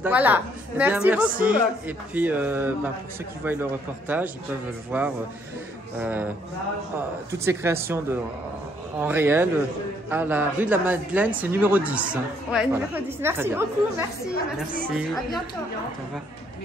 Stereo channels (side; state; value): both; normal; correlation 0.68